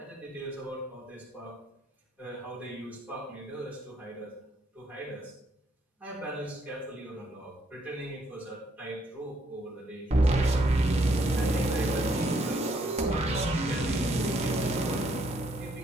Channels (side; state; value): both; normal; correlation 0.71